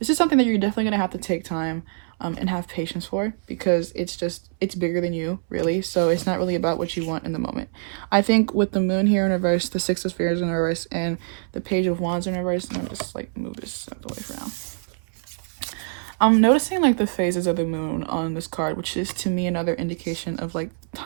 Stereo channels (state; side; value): silent; left; 62 dB below the other